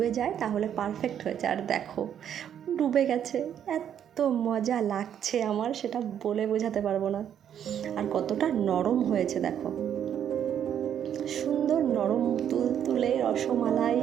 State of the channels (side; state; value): left; quieter; 9.4 dB